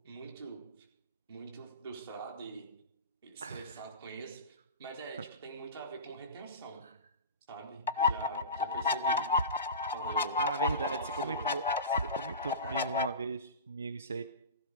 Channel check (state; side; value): inverted; both; correlation -0.30